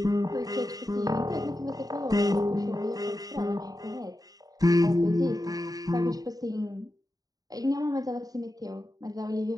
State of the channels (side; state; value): left; late; 0.18 ms